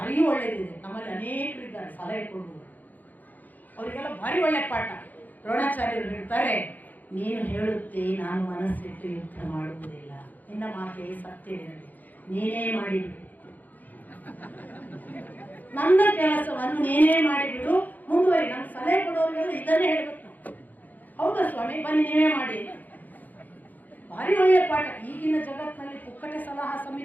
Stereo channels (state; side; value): late; right; 0.083 ms